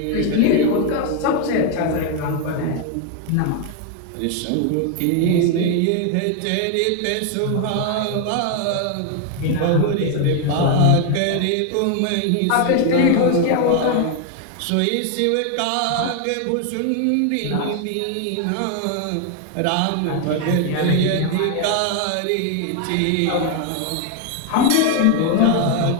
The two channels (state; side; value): different; both; correlation 0.01